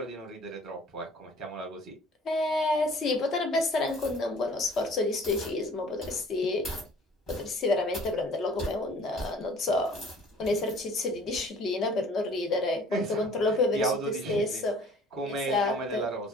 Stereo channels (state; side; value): normal; both; correlation 0.51